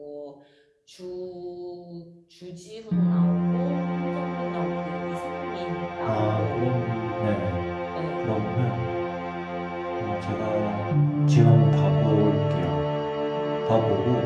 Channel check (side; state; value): both; identical; correlation 1.00